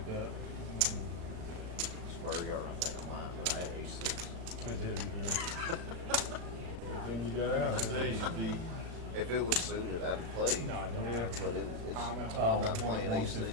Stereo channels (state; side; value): late; left; 36 ms